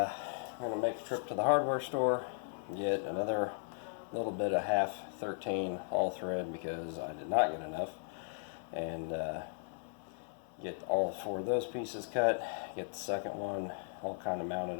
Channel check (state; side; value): silent; right; 53 dB below the other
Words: going to make a trip to the hardware store, get another little bit of half 13 all thread because I did not get enough, and get all 4 of those pieces cut, get the second one all kind of mounted